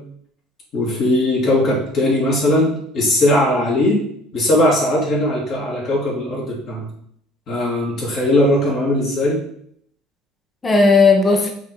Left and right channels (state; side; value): normal; both; correlation 0.57